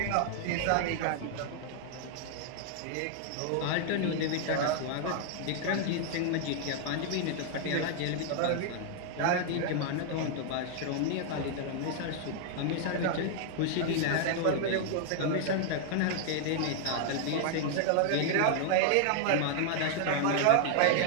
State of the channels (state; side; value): different; both; correlation 0.00